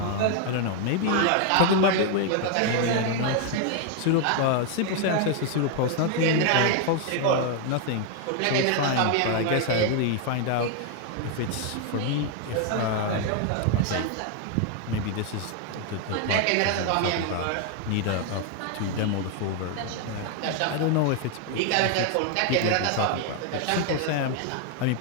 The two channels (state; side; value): different; both; correlation 0.01